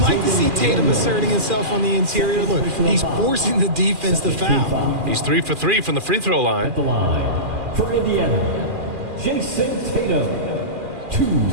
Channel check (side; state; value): left; late; 2.4 ms